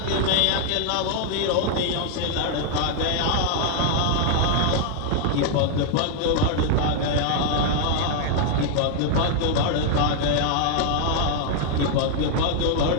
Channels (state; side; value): different; both; correlation 0.00